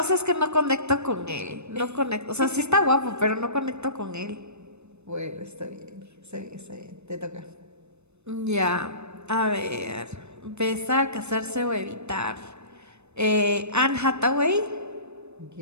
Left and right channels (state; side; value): late; left; 0.81 ms